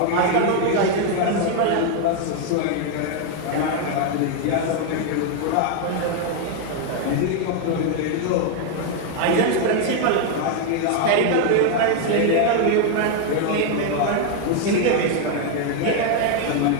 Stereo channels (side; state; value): both; different; correlation 0.00